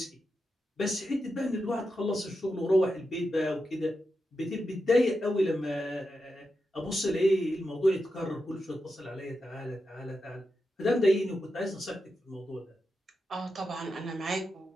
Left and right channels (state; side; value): normal; both; correlation 0.88